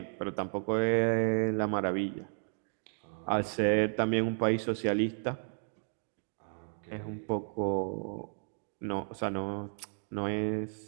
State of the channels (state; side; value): silent; left; 56 dB below the other